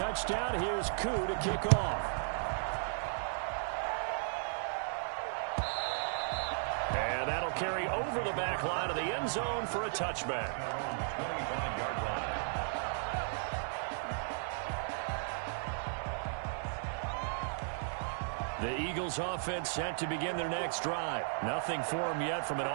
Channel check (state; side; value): silent; left; 54 dB below the other